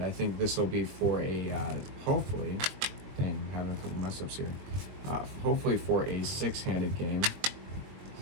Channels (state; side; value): late; left; 21 ms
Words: I think this will be for a hopefully. Dang, I'm having a couple mess ups here. Hopefully for a 6-handed game.